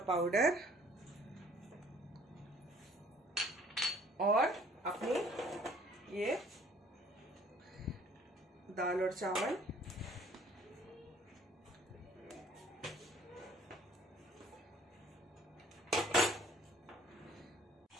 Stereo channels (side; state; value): both; normal; correlation 0.57